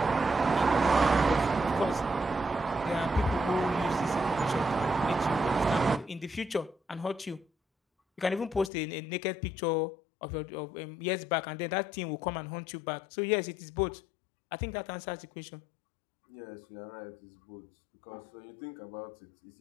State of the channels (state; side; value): drops out; right; at 8.7 s